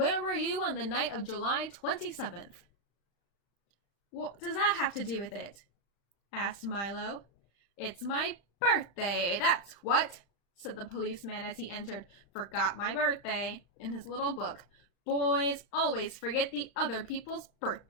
were you on the night of July 27th? "What does that have to do with it?" asked Milo. "It's my birthday, that's what," said the policeman as he entered "Forgot my birthday" in his little book. "Boys always forget the other people's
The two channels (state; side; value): late; right; 35 ms